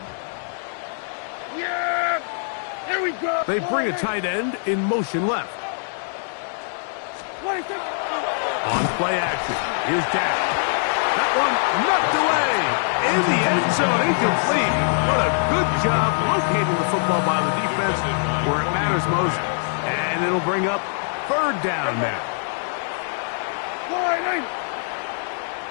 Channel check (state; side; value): silent; right; 63 dB below the other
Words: Yeah, here we go. They bring a tight end in motion left. On play action, here's Dak. That one knocked away in the end zone, incomplete. What a good job locating the football by the defense where it matters most. And it'll bring up third down now.